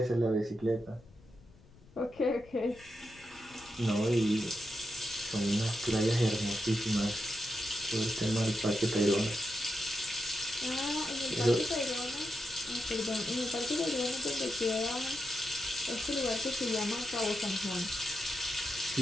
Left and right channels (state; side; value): noise; left; rumble, 24 dB below the sound